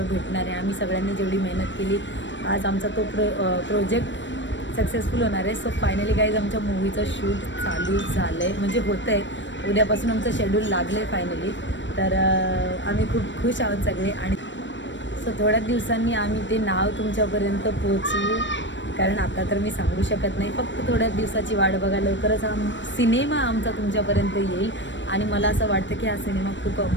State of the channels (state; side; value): late; right; 0.54 ms